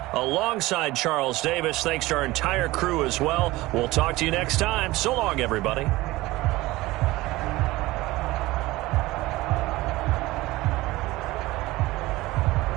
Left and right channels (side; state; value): left; quieter; 19.2 dB